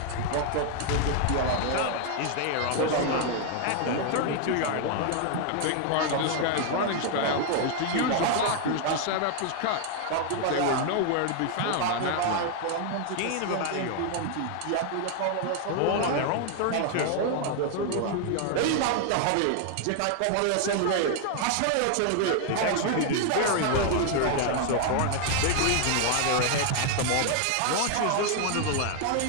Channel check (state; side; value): different; both; correlation 0.00